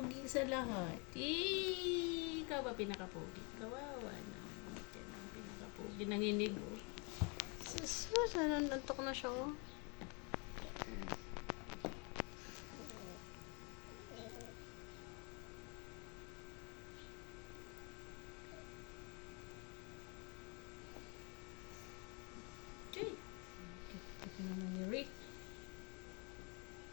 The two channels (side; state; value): right; quieter; 33.0 dB